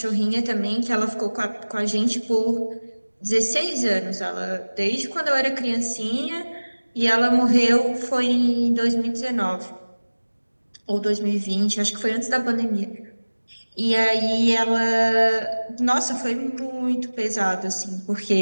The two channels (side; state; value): both; inverted; correlation -1.00